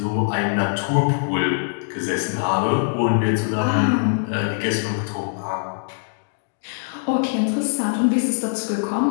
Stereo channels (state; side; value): silent; right; digital silence